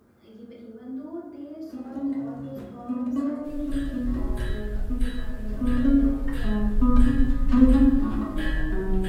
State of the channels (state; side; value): identical; both; correlation 1.00